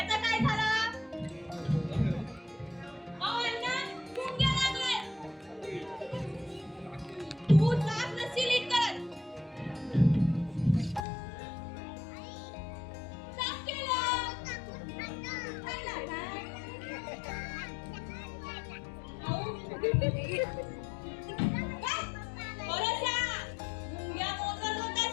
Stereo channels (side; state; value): right; drops out; at 11.1 s